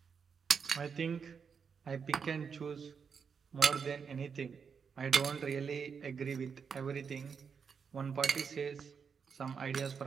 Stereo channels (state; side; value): quieter; left; 6.2 dB